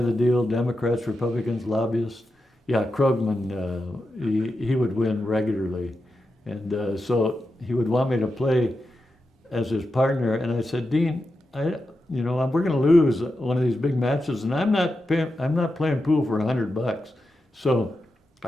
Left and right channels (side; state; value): both; normal; correlation 0.89